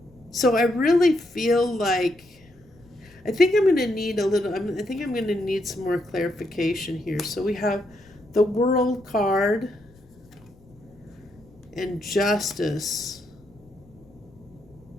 So I really feel like, I think I'm going to need I think I'm going to need some more clarification here. So we have the World card and Justice.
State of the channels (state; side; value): noise; left; rumble, 28 dB below the sound